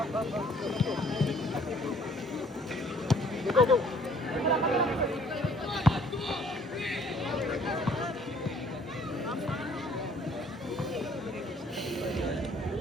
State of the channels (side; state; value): both; normal; correlation 0.59